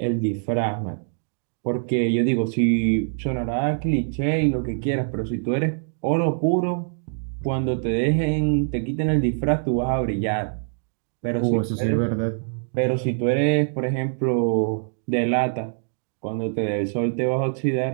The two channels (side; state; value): left; silent; digital silence